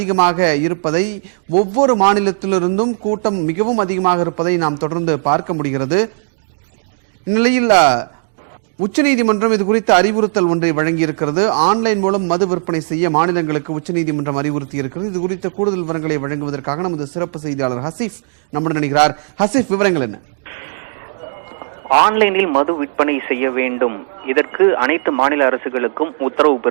இருப்பதை, ஒவ்வொரு மாநிலத்திலிருந்தும் கூட்டம் மிகவும் அதிகமாக இருப்பதை நாம் தொடர்ந்து பார்க்க முடிகிறது. இந்நிலையில் உச்சநீதிமன்றம் இது குறித்த அறிவுறுத்தல் ஒன்றை வழங்கியிருக்கிறது. ஆன்லைன் மூலம் மது விற்பனை செய்ய மாநிலங்களுக்கு உச்சநீதிமன்றம் அறிவுறுத்தி இருக்கிறது. இது குறித்த கூடுதல் விவரங்களை வழங்குவதற்காக நமது சிறப்பு செய்தியாளர் ஹசீஃப் நம்முடன் இணைகிறார். ஹசீஃப், விவரங்கள் என்ன? ஆன்லைனில் மது விற்பனை செய்ய வேண்டும், இதற்கு அனைத்து மாநில அரசுகளுக்கும் உத்தரவு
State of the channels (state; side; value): silent; left; digital silence